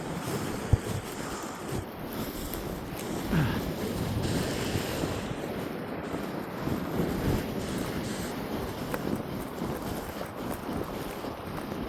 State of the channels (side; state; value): both; identical; correlation 1.00